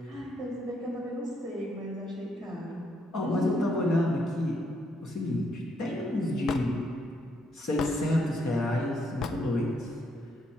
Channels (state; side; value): normal; both; correlation 0.74